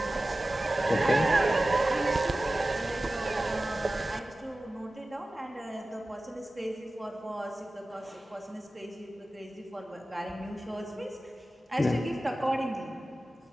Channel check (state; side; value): normal; both; correlation 0.96